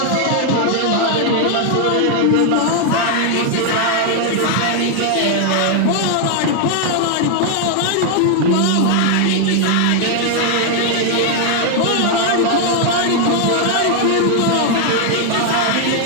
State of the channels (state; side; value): different; both; correlation 0.00